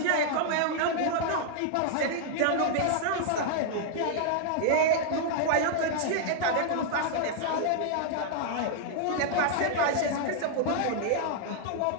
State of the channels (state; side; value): different; both; correlation -0.01